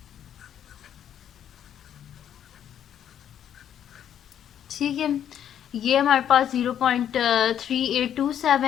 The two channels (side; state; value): right; quieter; 9.8 dB